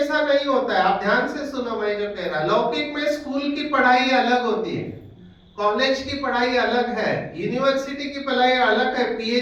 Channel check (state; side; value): identical; both; correlation 1.00